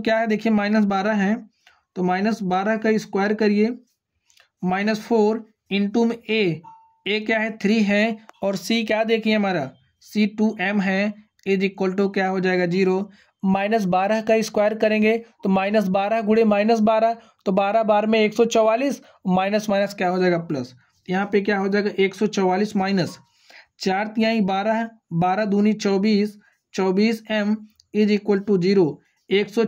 है, देखिए -12 है, तो -12 का स्क्वायर करिए, -4 इंटू में a क्या है 3 है, और c क्या देखिए हमारा c 2m है, = क्या हो जाएगा 0। -12 का स्क्वायर करेंगे तो -12 गुणे -12, तो 12 बार में 144, माइनस माइनस क्या हो जाएगा प्लस। यहाँ पे क्या हो जाएगा 144 माइनस 4 तिहाई 12, 12 दूनी 24, 24m = 0।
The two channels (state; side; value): identical; both; correlation 1.00